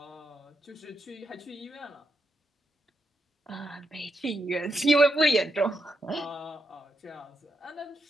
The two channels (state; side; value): normal; both; correlation 0.83